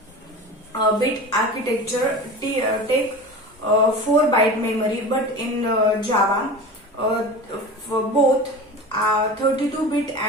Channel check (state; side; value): normal; both; correlation 0.33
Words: architecture take 4-byte memory. But in Java, for both 32-bit